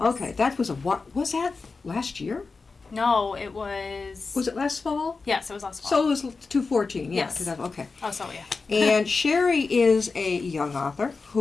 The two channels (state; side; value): quieter; right; 4.3 dB